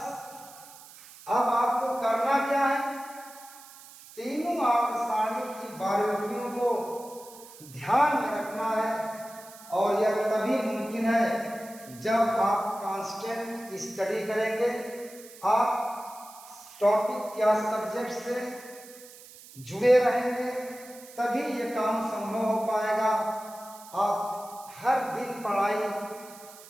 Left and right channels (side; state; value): right; noise; hiss, 19 dB below the sound